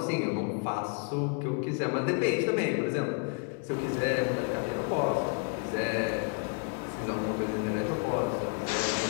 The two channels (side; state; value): right; quieter; 36.2 dB